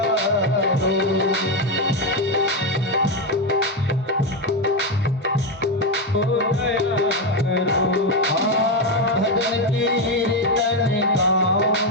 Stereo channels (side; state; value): both; normal; correlation 0.08